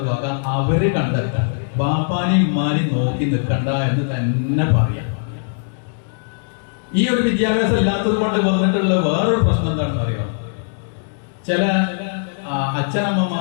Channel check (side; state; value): right; silent; digital silence